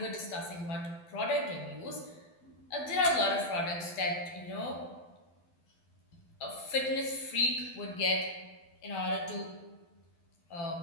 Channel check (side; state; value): right; late; 12 ms